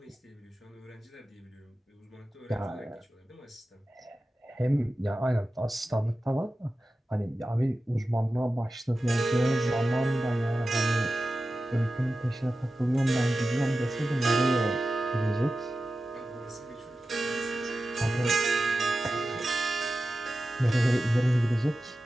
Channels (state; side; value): normal; both; correlation 0.93